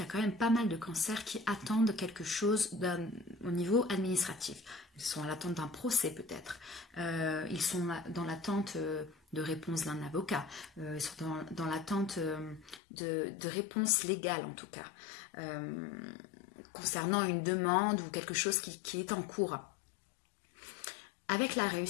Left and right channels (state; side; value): drops out; right; at 12.8 s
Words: y a quand même pas mal de cancers qui attendent quelque chose au niveau administratif. Ils sont à l'attente d'un procès peut-être. Ils sont dans l'attente de réponse d'un avocat. Ils sont dans l'attente de réponses légales en tout cas. Concernant une demande ou quelque chose qui est en cours. Avec la